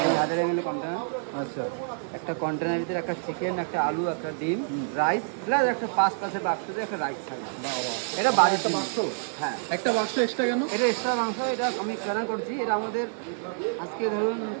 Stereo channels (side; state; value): left; silent; digital silence